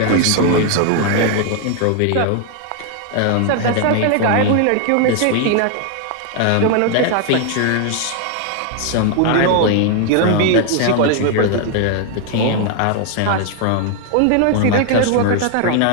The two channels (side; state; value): both; different; correlation 0.00